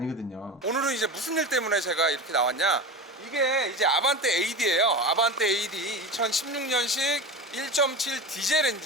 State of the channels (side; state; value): both; normal; correlation 0.26